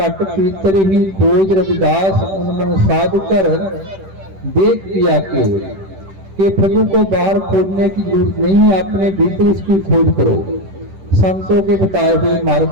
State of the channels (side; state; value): left; late; 10 ms